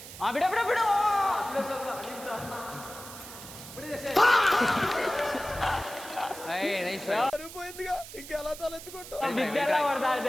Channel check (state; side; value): noise; right; hiss, 14 dB below the sound